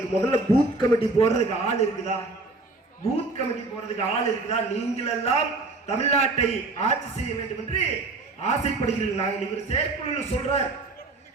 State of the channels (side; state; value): left; quieter; 3.4 dB